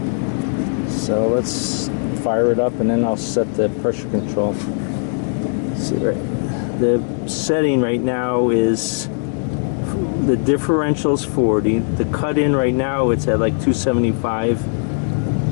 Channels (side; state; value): right; silent; 59 dB below the other